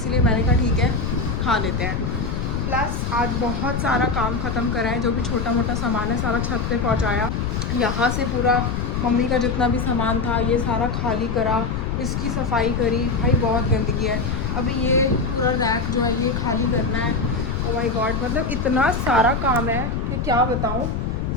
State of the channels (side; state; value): left; noise; rumble, 1 dB below the sound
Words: मैंने कहा ठीक है खा लेते हैं। प्लस आज बहुत सारा काम ख़त्म करा है, जो भी छोटा मोटा सामान है सारा छत पे पहुंचाया। यहाँ से पूरा मम्मी का जितना भी सामान था ये सारा खाली करा, इसकी सफाई करी। भाई बहुत गंदगी है। अभी ये पूरा रैक जो है ये खाली करना है। ओ माय गॉड, मतलब इतना सारा काम है कि क्या बताऊँ।